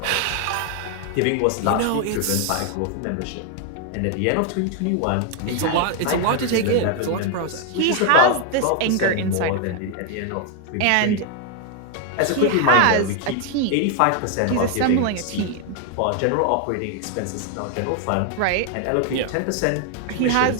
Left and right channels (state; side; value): different; both; correlation 0.00